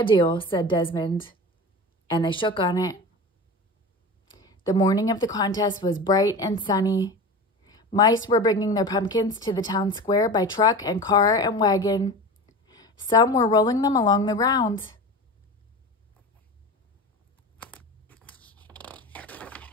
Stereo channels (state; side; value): normal; both; correlation 0.31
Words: deal," said Desmond. And they shook on it. The morning of the contest was bright and sunny. Mice were bringing their pumpkins to the town square by truck and car and wagon. Some were rolling them along the ground.